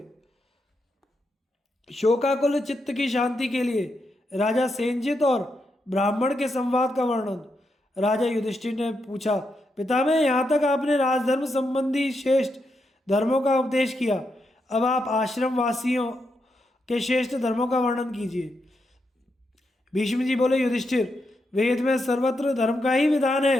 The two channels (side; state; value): both; normal; correlation 0.83